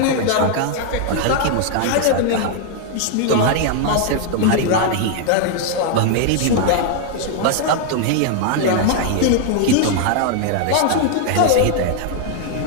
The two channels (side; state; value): both; different; correlation 0.00